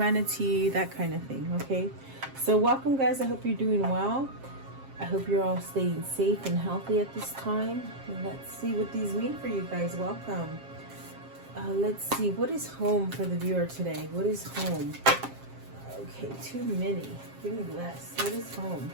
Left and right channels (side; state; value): left; late; 7.5 ms